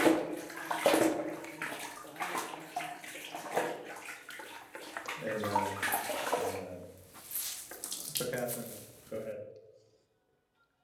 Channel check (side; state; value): both; identical; correlation 1.00